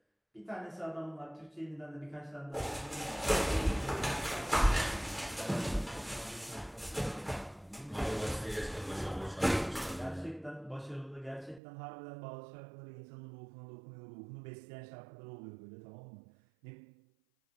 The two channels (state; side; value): drops out; left; at 11.6 s